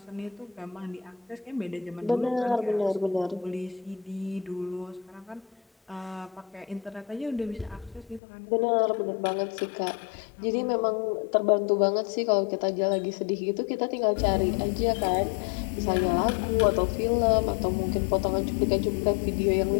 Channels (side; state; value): right; drops out; at 8.2 s